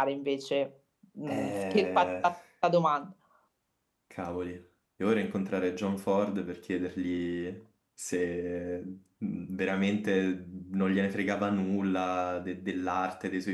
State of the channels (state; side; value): identical; both; correlation 1.00